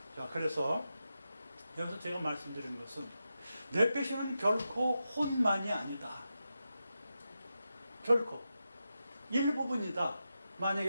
자, 그래서 여기서 제가 말씀드린 것은 네페시는 결코 혼만이 아니다. 결코 일부분이다. 만약에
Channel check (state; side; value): inverted; both; correlation -0.89